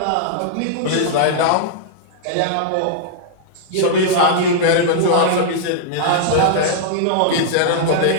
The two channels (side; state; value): both; different; correlation -0.02